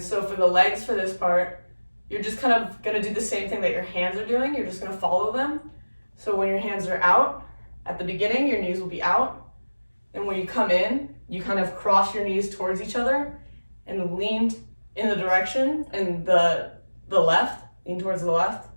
so for the legs for this part, you're just kind of gonna do the same thing that your hands are doing. You're just gonna follow them. So when your hands are out, at the beginning, your knees will be out. And when you come in, you kind of cross your knees towards each other and lean in the direction and the left, lean towards the left.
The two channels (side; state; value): both; inverted; correlation -1.00